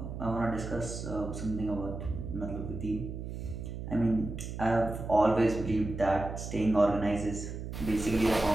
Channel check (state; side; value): noise; right; hum, 7 dB below the sound